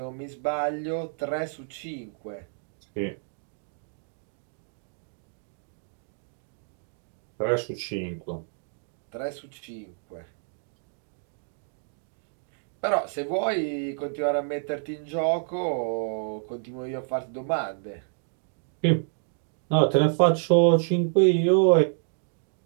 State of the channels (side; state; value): left; silent; digital silence